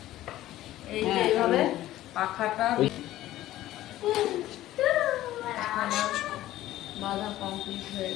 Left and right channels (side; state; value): right; quieter; 14.6 dB